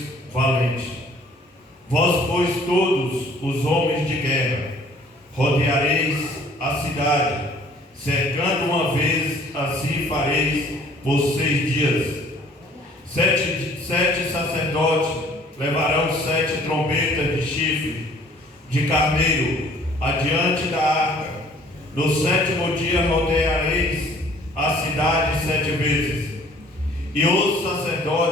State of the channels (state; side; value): normal; both; correlation 0.56